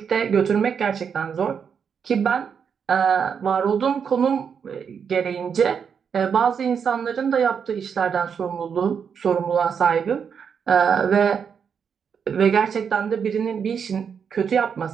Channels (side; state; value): left; quieter; 6.9 dB